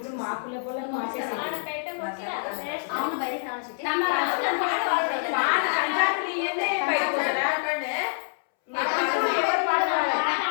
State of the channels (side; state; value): right; silent; 61 dB below the other